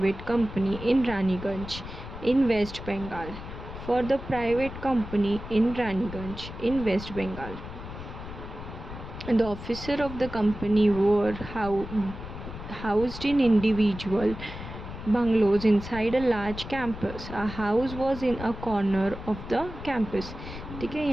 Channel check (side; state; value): left; noise; rumble, 11 dB below the sound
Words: company in Raniganj in West Bengal. For the private company in Raniganj in West Bengal. The officer of the company were housed in individual bungalows inside a large campus. A house was in a corner of the campus. ठीक है,